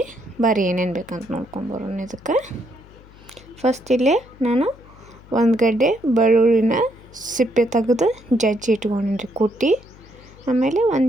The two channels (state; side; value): noise; left; hum, 23 dB below the sound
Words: ಬರ್ರಿ ಏನೇನು ಬೇಕಂತ ನೋಡ್ಕೊಂಬರೋಣ. ಇದಕ್ಕೆ ಫಸ್ಟ್ ಇಲ್ಲೇ ನಾನು ಒಂದು ಗಡ್ಡೆ ಬೆಳ್ಳುಳ್ಳಿನ ಸಿಪ್ಪೆ ತೆಗೆದು ಜಜ್ಜಿ ಇಟ್ಕೊಂಡಿನಿ ರೀ, ಕುಟ್ಟಿ. ಆಮೇಲೆ